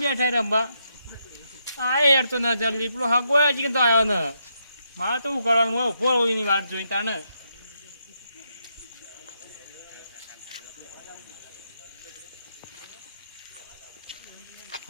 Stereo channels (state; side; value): inverted; both; correlation -0.80